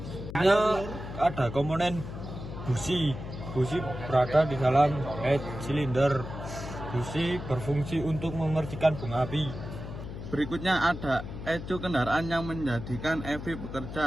Ada komponen busi. Busi berada di dalam head cylinder. Busi berfungsi untuk memercikan bunga api. Berikutnya ada ECU kendaraan yang menjadikan EV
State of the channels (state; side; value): noise; left; hum, 9 dB below the sound